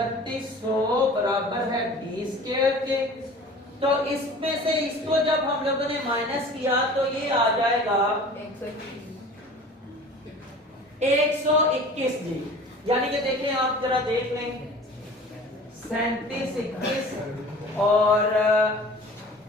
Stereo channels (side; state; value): both; normal; correlation 0.43